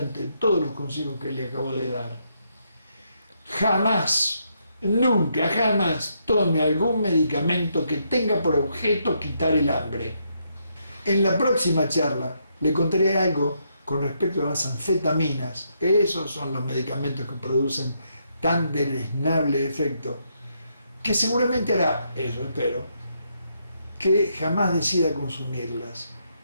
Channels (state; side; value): inverted; both; correlation -0.77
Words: de todos los consejos que le acabo de dar. Jamás, nunca, jamás tome algún medicamento que tenga por objeto quitar el hambre. En la próxima charla le contaré algo con respecto a las anfetaminas. Esos son los medicamentos que producen tan deleznable efecto, que seguramente hará, eso espero, que jamás decida consumirlas,